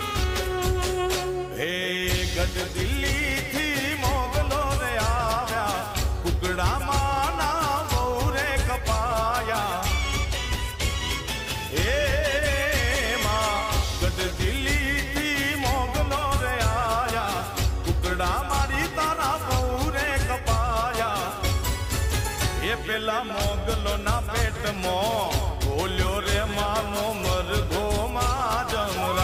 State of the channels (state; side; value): identical; both; correlation 1.00